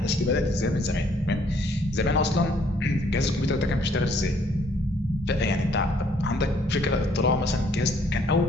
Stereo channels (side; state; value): both; normal; correlation 0.64